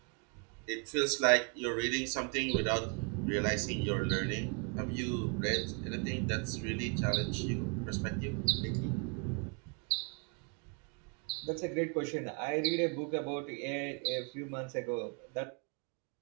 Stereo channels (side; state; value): left; quieter; 32.4 dB